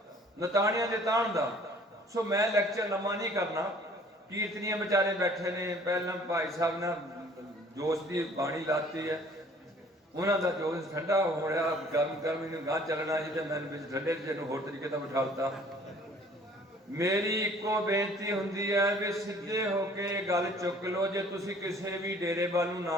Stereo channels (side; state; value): both; normal; correlation 0.54